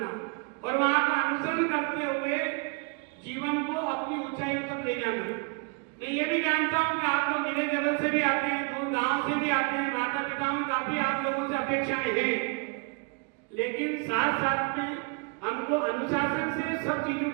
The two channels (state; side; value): quieter; left; 33.8 dB